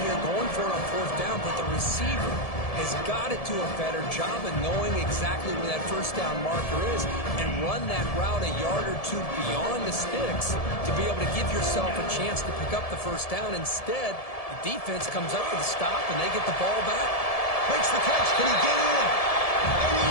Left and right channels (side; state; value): right; late; 1.7 ms